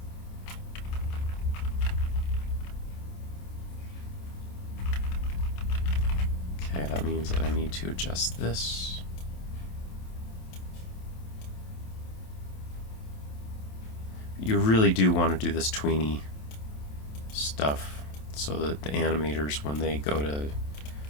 Okay, that means that I need to adjust this. You really do want to do this tweeny stuff so that the animators, when they go to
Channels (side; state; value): right; late; 27 ms